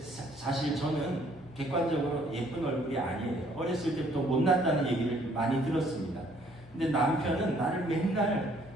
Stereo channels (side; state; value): both; normal; correlation 0.63